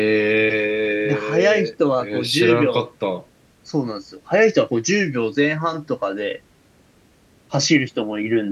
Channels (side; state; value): both; identical; correlation 1.00